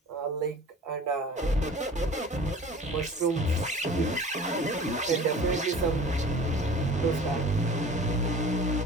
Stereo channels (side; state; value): both; normal; correlation 0.43